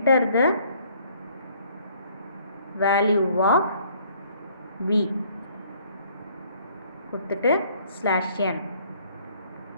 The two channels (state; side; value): inverted; both; correlation -0.60